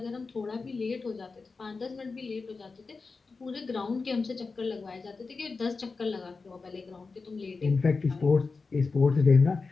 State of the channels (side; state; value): right; quieter; 4.3 dB